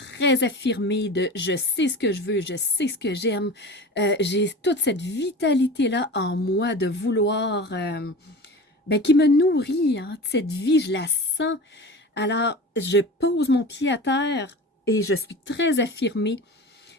affirmée de je sais ce que je veux, je sais ce que j'aime. J'ai toute cette vitalité-là en moi de vouloir, qui me nourrit, hein, cette vie, je la sens. Alors, je pose mon pied à terre et je suis très affirmée.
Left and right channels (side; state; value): both; normal; correlation 0.33